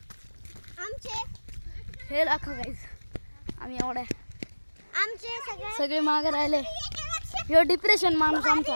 आमचे हे दाखव गाइस. आम्ही एवढ्या आमचे सगळे मागे राहिले. ह्यो डिप्रेशन माणूस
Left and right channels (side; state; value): both; inverted; correlation -1.00